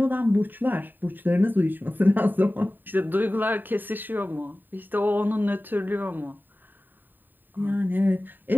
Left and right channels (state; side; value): late; left; 0.091 ms